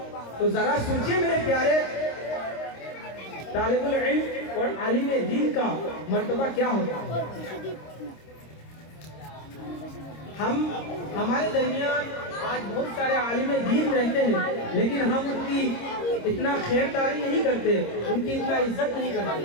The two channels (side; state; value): right; late; 26 ms